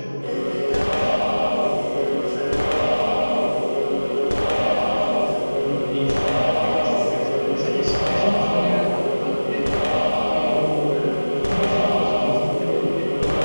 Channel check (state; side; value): inverted; both; correlation -1.00